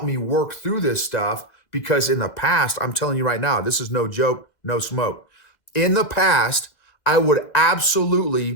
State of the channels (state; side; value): late; right; 2.1 ms